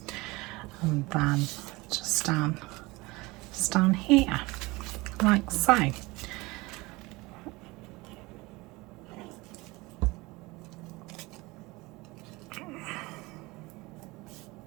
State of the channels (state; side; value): quieter; left; 22.7 dB